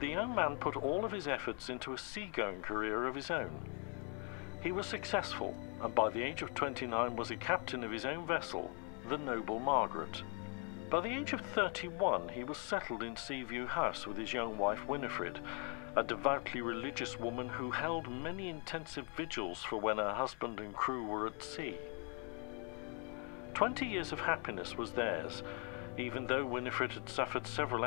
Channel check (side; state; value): right; quieter; 37.9 dB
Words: young man put all of his efforts into a seagoing career of his own. He was successful, and by the age of 29 was a captain of his own vessel, the Noble Margaret. By the age of 31, he was settled in Seaview House with his young wife Winifred, a devoutly religious woman who held many intensive vigils for when her husband and crew were at sea. 20 years of happiness was theirs, even though Winifred had suffered several